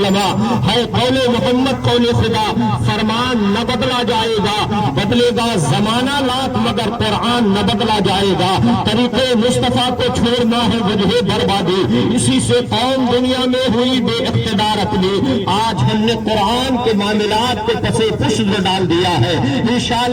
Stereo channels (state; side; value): identical; both; correlation 1.00